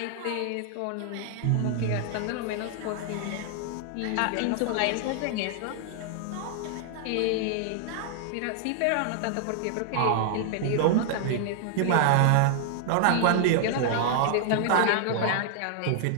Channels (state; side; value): different; both; correlation -0.01